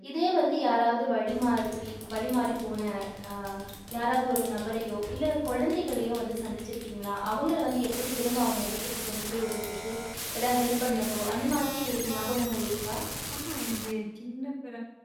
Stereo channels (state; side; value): identical; both; correlation 1.00